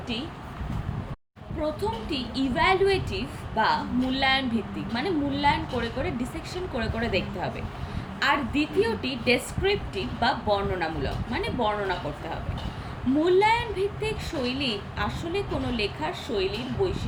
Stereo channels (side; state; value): both; identical; correlation 1.00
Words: প্রথমটি ইভ্যালুয়েটিভ বা মূল্যায়ন ভিত্তিক, মানে মূল্যায়ন করে করে ডিসেকশন করে করে দেখতে হবে। আর দ্বিতীয়টি ডেসক্রিপটিভ বা বর্ণনামূলক, মানে বর্ণনা করতে হবে। মূল্যায়ন ভিত্তিক শৈলী আসলে কোনো লেখার শৈলীর